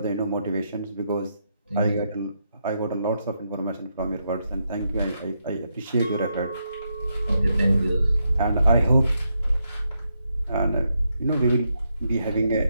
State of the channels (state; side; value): inverted; both; correlation -0.81